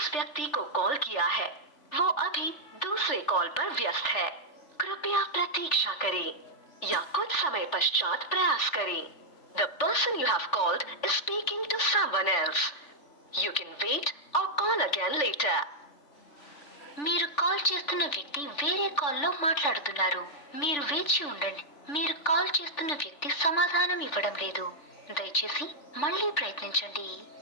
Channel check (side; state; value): right; late; 3.4 ms